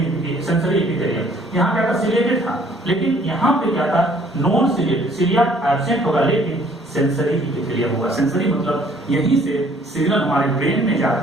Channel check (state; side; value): normal; both; correlation 0.59